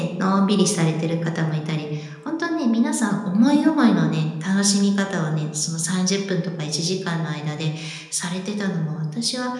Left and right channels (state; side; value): identical; both; correlation 1.00